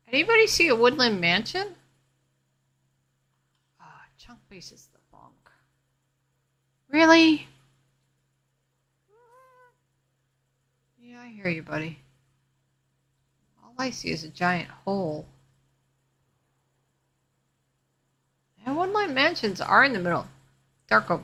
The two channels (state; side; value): identical; both; correlation 1.00